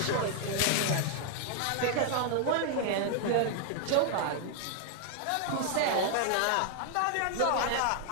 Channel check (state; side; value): different; both; correlation 0.00